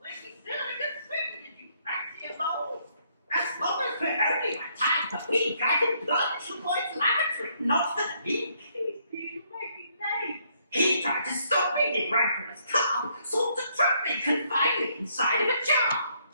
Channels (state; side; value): inverted; both; correlation -0.70